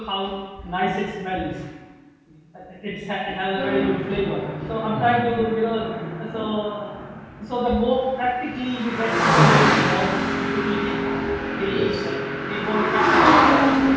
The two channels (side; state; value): both; identical; correlation 1.00